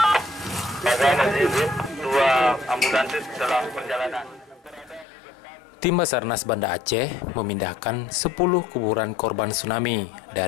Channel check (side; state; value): right; drops out; at 5.1 s